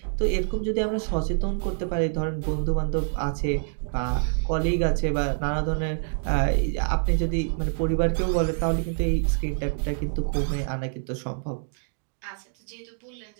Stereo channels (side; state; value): left; silent; digital silence